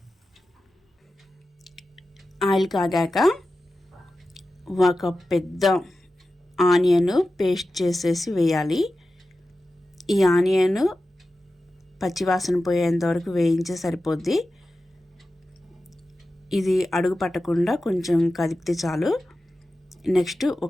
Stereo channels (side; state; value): both; normal; correlation 0.93